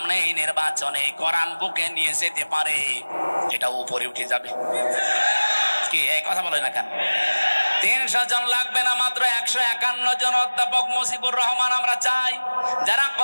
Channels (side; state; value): both; inverted; correlation -1.00